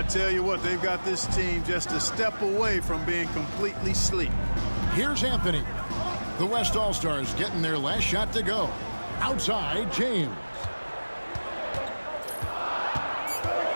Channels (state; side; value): inverted; both; correlation -1.00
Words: tell you what, they've got this team just a step away from being completely asleep. Here's Anthony. The West All-Stars getting their last shot to go. Outside, James.